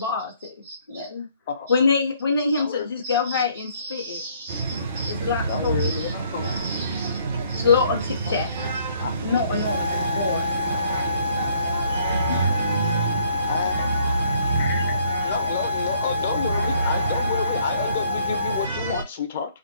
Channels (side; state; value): both; inverted; correlation -0.64